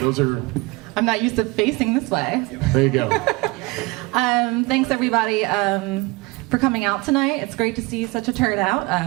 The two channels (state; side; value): quieter; left; 23.9 dB